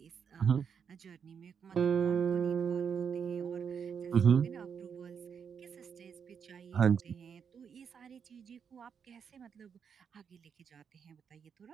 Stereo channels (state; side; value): quieter; left; 7.0 dB